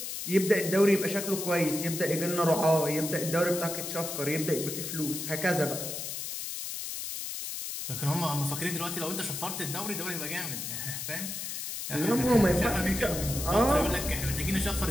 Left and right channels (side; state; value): left; noise; hiss, 5 dB below the sound